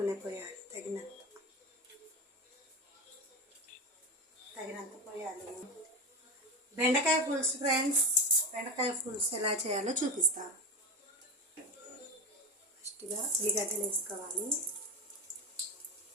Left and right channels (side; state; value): both; normal; correlation 0.20